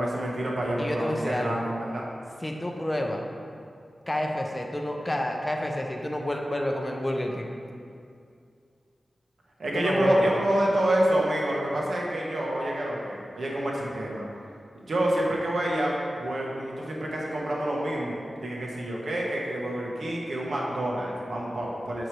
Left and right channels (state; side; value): normal; both; correlation 0.94